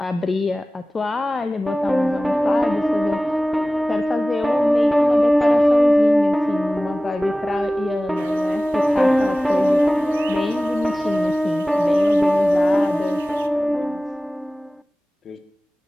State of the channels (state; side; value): normal; both; correlation 0.97